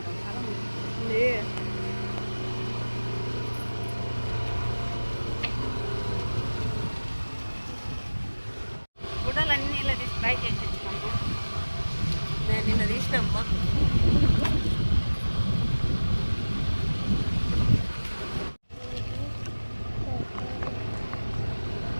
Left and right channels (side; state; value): both; inverted; correlation -1.00